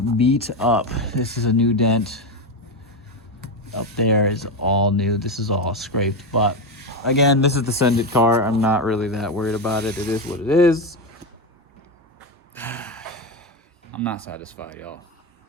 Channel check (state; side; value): normal; both; correlation 0.13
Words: beat up. This is a new dent. Up there is all new. This is all scraped. But again, this is the Send It car. I'm not really that worried about it. It is what it is. I'm not satisfied, y'all.